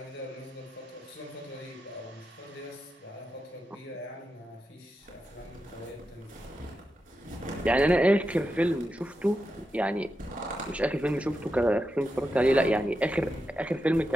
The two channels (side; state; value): both; normal; correlation 0.88